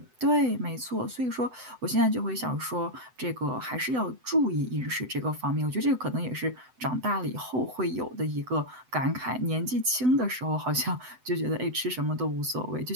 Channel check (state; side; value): late; left; 7.9 ms